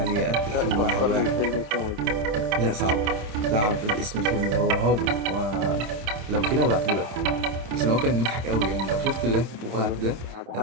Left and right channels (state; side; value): late; left; 27 ms